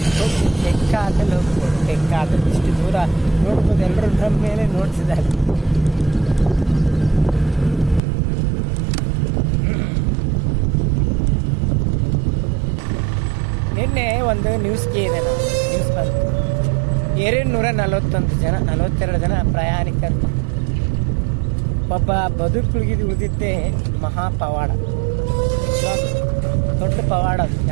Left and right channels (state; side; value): drops out; left; at 8.0 s